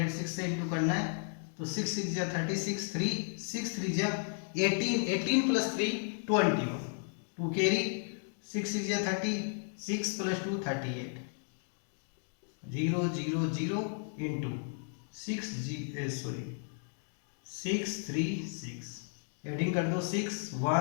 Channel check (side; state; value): right; silent; 55 dB below the other